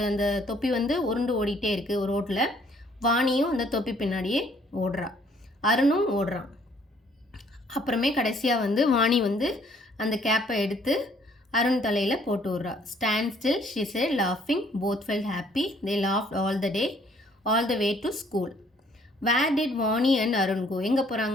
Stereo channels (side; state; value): both; normal; correlation 0.62